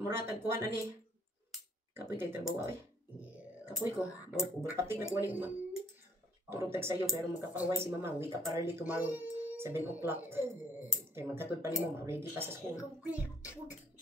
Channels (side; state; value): both; normal; correlation 0.62